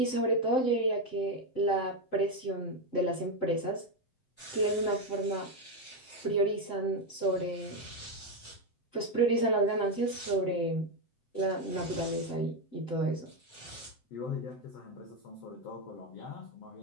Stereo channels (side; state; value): right; late; 7.7 ms